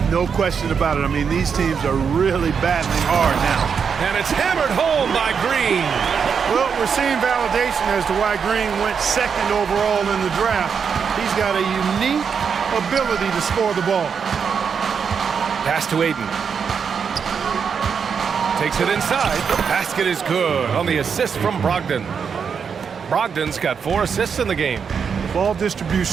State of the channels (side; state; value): left; quieter; 6.5 dB